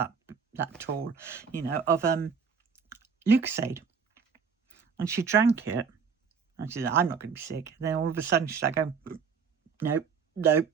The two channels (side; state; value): left; quieter; 6.0 dB